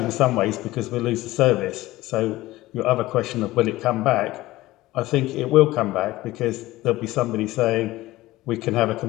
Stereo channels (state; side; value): quieter; right; 17.6 dB